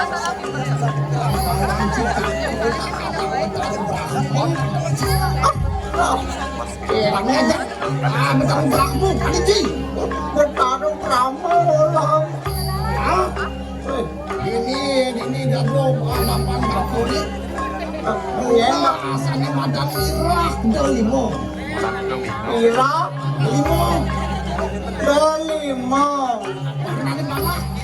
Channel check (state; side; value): identical; both; correlation 1.00